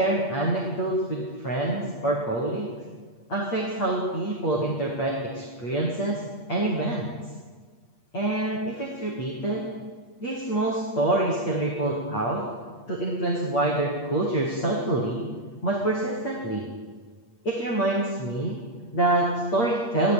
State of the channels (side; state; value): right; late; 8.5 ms